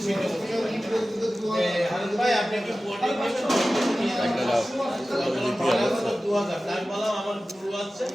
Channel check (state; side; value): normal; both; correlation 0.96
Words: সেটা হারুন ভাই আপনি কি বোর্ডিং নেবেন 2000 টাকা বললাম আমার গুরু আছে